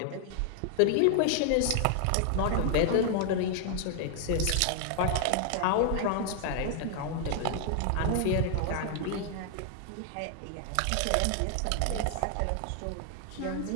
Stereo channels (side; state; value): both; different; correlation 0.00